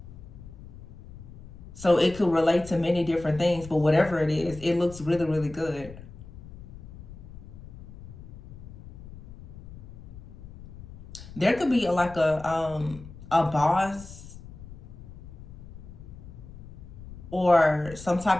So it could relate to many different things, but whatever it is, it looks really, really good. There could be like a boss or some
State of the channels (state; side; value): noise; left; rumble, 16 dB below the sound